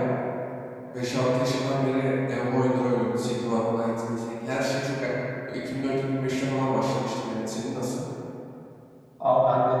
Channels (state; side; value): identical; both; correlation 1.00